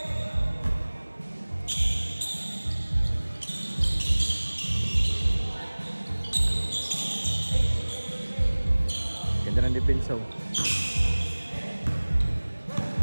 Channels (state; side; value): inverted; both; correlation -1.00